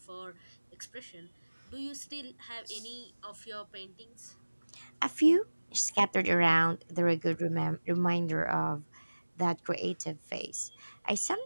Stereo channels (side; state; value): both; inverted; correlation -1.00